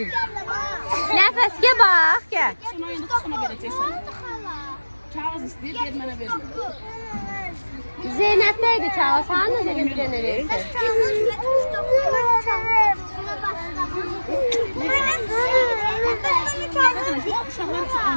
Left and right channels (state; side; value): inverted; both; correlation -1.00